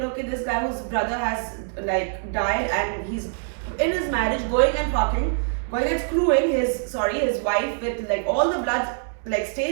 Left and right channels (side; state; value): left; silent; 62 dB below the other